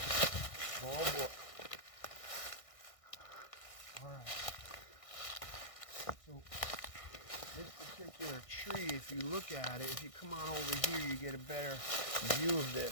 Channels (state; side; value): late; right; 1.6 ms